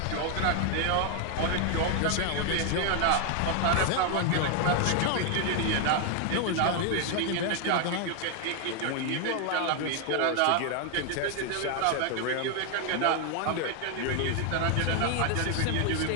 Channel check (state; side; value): different; both; correlation 0.00